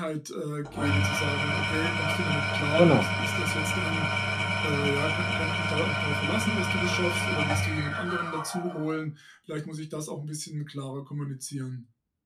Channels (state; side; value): identical; both; correlation 1.00